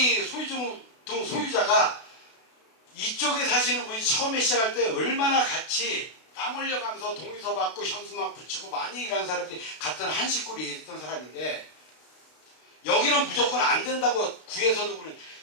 소유자가 이쪽에 사시는 분이 처음에 시작할 때 얼마나 같이 땀 흘려가면서 동의서 받고 현수막 붙이고 많이 일하는 사람들이 같은 한 식구로 일했던 사람인데 여기는 무조건 안 된다고 구에서도 그러는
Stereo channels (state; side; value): late; right; 32 ms